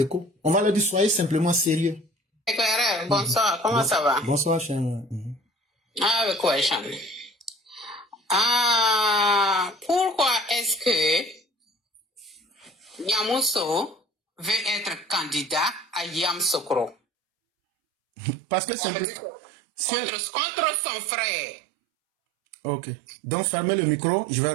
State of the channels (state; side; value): drops out; left; at 16.9 s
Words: on va leur dire, soyez simplement sérieux. Éclaireur, bonsoir, comment ça va? Bonsoir, cher. Ah, avec quoi, Cham? Ah, pourquoi est-ce que Yamoussoukro veut être candidat à Yamoussoukro? Parce que c'est contre son frère. Ok. Donc, fermez le micro, je vais